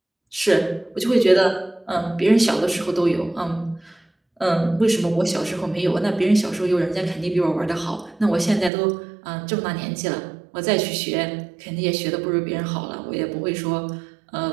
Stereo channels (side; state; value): left; drops out; at 8.7 s